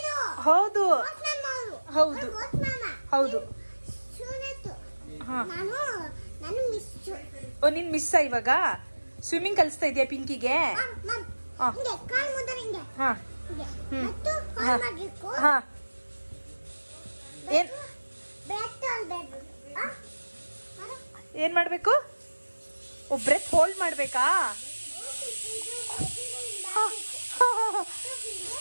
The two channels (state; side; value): inverted; both; correlation -1.00